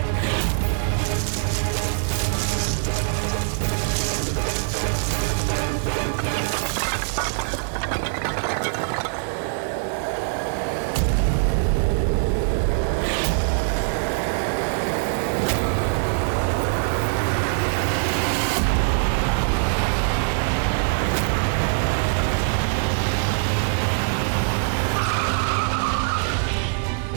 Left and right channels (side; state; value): left; silent; digital silence